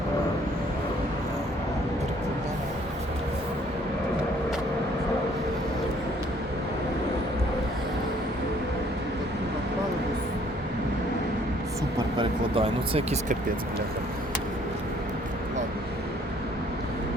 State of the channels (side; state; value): both; normal; correlation 0.61